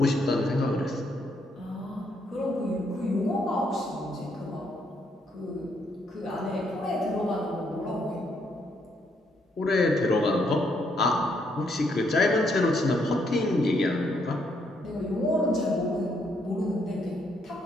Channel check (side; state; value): both; normal; correlation 0.73